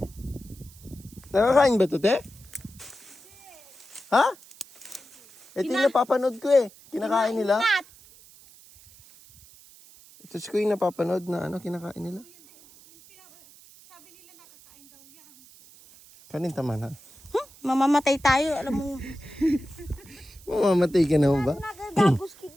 Nakakain ba ito, te? Ha? Ito yung napapanood ko eh. Kinakain nila. Ingat. Ito ko yung napapanood na ano, kinakain nila. Sabi nila nakakain daw yan. Kanin tama na. Mamamatay tayo, alam mo. Mamamatay ka naman ba? Nagagagos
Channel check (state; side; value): noise; right; hiss, 24 dB below the sound